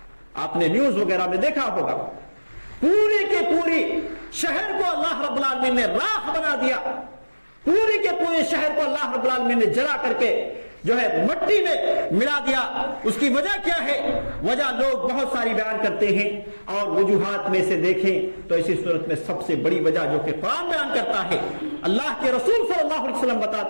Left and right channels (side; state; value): both; inverted; correlation -1.00